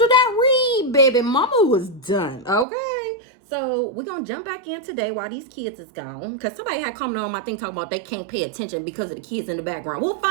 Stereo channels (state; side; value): drops out; left; at 2.7 s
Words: that read, baby, mama was done. Okay. So we're gonna jump back in today while these kids is gone. Because somebody had commented on my thing talking about they can't pay attention because of the kids in the background. We'll